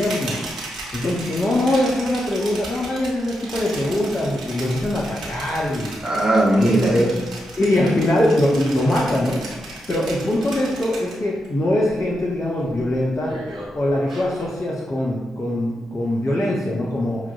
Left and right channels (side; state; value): both; normal; correlation 0.85